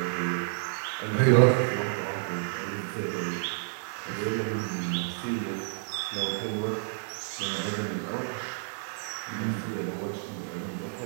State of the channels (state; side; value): silent; left; digital silence